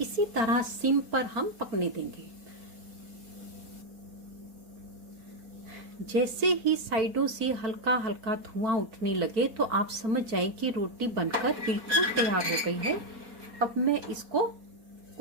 इसी तरह सिम पर हम पकने देंगे। जैसे ही साइडों से हल्का हल्का धुआं उठने लगे तो आप समझ जाएं कि रोटी बनकर बिल्कुल तैयार हो गई है। अब मैं इसको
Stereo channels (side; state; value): left; late; 4.2 ms